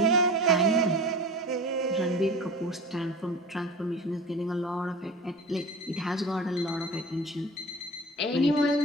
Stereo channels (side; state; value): both; normal; correlation 0.35